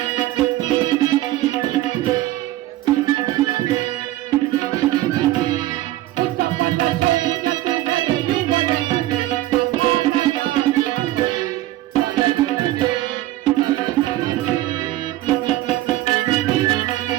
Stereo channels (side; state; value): left; quieter; 15.8 dB